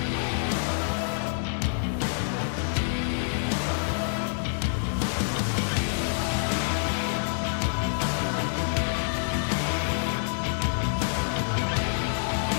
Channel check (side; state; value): right; silent; digital silence